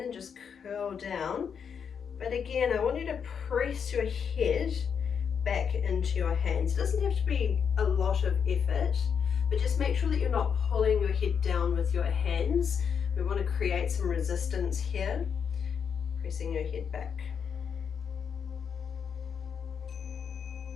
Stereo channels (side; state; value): right; quieter; 7.0 dB